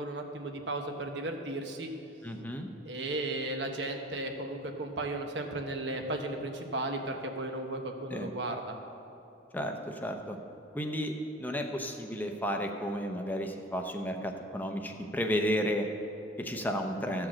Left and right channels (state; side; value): normal; both; correlation 0.41